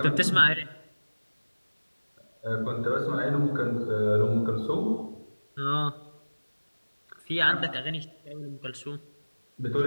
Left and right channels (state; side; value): inverted; both; correlation -1.00